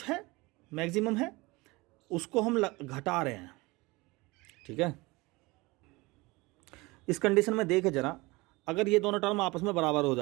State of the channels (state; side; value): quieter; left; 23.2 dB